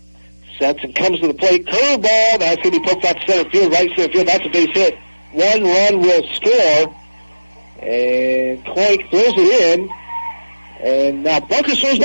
Sets and comes to the plate. Curveball. That's going to be put out to center field, right center field. That's a base hit. 1 run will score. And Clake throws it in. And now Bunker throws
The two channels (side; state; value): both; inverted; correlation -1.00